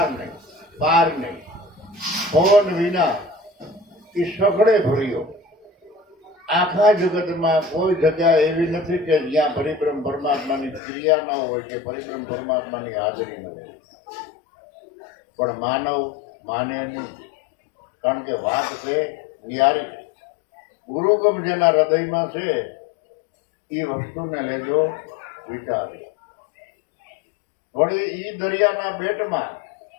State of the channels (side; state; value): right; drops out; at 10.8 s